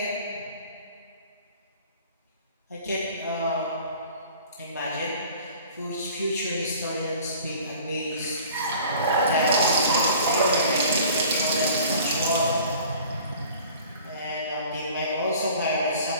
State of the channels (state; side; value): inverted; both; correlation -0.47